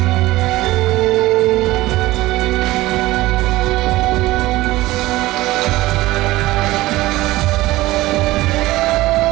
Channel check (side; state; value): left; quieter; 18.2 dB